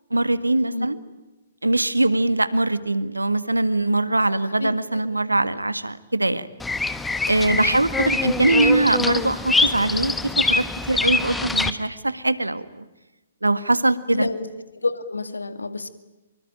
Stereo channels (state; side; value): inverted; both; correlation -0.60